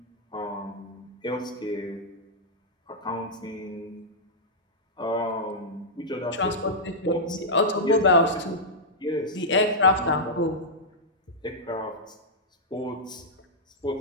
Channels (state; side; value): normal; both; correlation -0.08